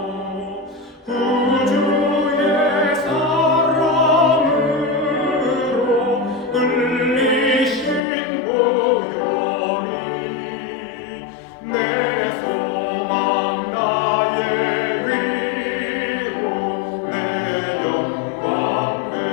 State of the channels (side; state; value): right; drops out; at 8.0 s